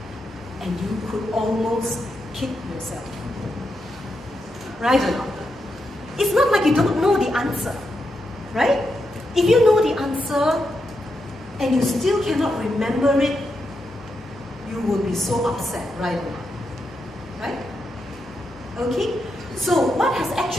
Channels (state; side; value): normal; both; correlation 0.85